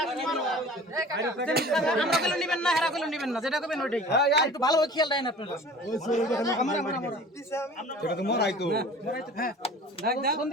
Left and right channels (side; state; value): both; normal; correlation 0.43